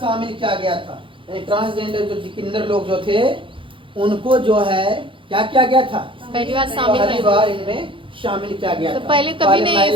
शामिल किया गया था। ट्रांसजेंडर जो किन्नर लोग जो थे उनको जो है क्या किया गया था, पहली बार पहली बार इनमें शामिल किया गया तो था। पहले कभी नहीं महिला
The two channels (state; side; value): late; left; 0.25 ms